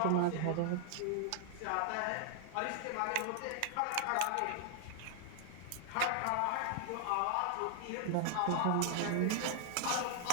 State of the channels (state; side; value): different; both; correlation 0.00